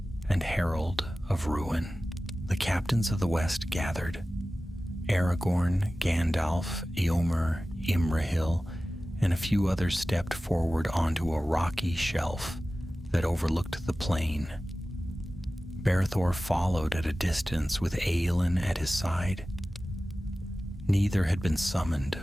and herald of ruin. The captains of the West gathered. Aragorn, Gandalf, Eomer, Imrahil, and a few others stepped forward onto a rocky shelf that overlooked the plain. Berethor followed at a distance with Aelin at his side. Neither had been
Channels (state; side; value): normal; both; correlation 0.96